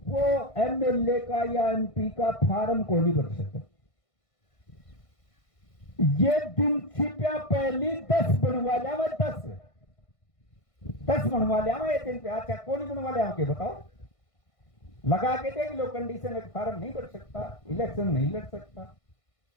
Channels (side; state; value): right; late; 1.5 ms